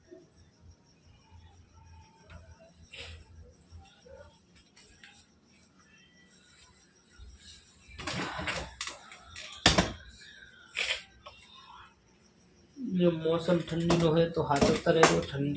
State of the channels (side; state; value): both; identical; correlation 1.00